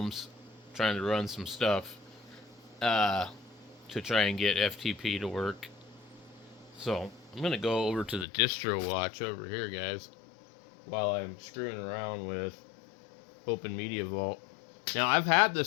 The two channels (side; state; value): right; drops out; at 8.2 s